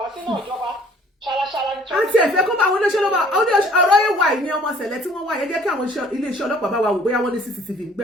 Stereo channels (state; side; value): normal; both; correlation 0.56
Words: sínú ìjọba ṣaraṣara ní. àti ẹ̀fẹ́ kó bá àwọn olóṣèlú bá ọ̀rọ̀ yẹn wà ní ọmọ ṣẹlẹ̀ tí wọ́n wà yẹn jẹ́ kí àwọn iléeṣẹ́ ọlọ́pàá bá wa wò bóyá wọ́n ní CCTV